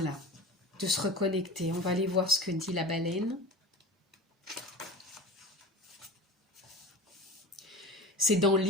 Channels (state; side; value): normal; both; correlation 0.33